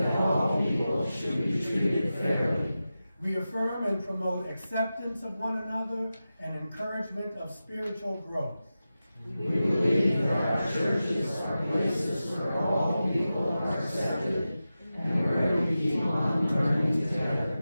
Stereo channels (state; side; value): inverted; both; correlation -0.93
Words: all people should be treated fairly. We affirm and promote acceptance of one another and encouragement of spiritual growth. We believe that our churches are places where all people are accepted and where we keep on learning